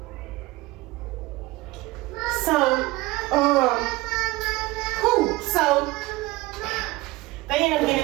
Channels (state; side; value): quieter; left; 20.1 dB